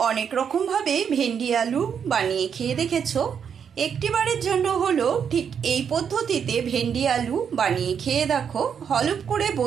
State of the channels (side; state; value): left; quieter; 7.4 dB